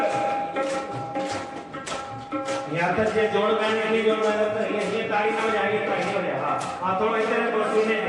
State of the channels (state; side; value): identical; both; correlation 1.00